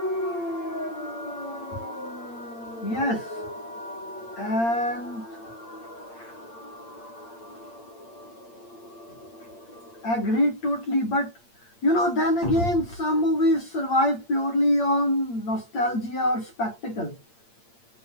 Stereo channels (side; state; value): right; late; 8.7 ms